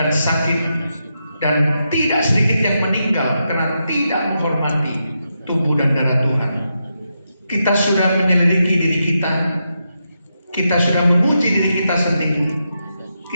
sakit, dan tidak sedikit yang meninggal karena tidak menghormati tubuh dan darah Tuhan. Kita sudah menyelidiki diri kita. Kita sudah memuji diri kita sendiri.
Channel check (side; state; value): both; inverted; correlation -0.85